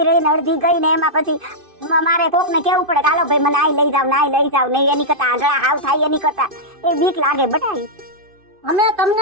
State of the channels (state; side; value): late; left; 2.5 ms